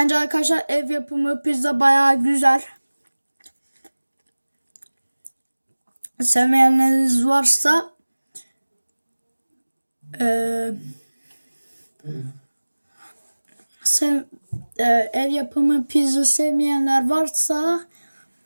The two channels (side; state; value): both; inverted; correlation -1.00